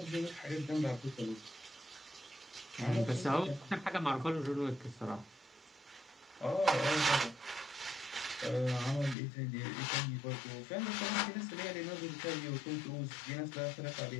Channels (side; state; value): right; drops out; at 9.2 s